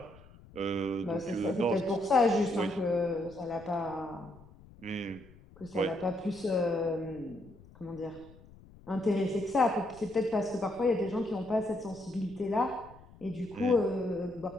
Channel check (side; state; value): left; noise; rumble, 22 dB below the sound